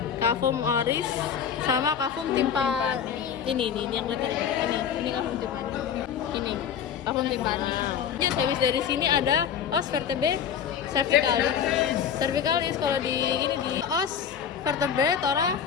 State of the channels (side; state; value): right; quieter; 8.0 dB